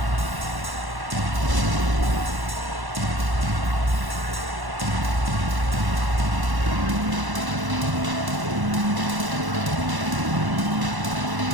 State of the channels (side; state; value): left; late; 1.1 ms